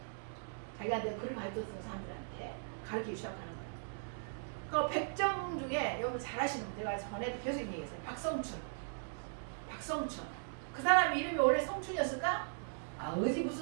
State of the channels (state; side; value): silent; left; digital silence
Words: 자기한테 글을 가르쳤던 사람들한테 가르치기 시작하는 거예요. 그 백정 중에 여러분 잘하시는 분 제가 전에 계속 얘기했어요. 박성춘. 그 사람 이름이 원래 성춘이었을까? 어디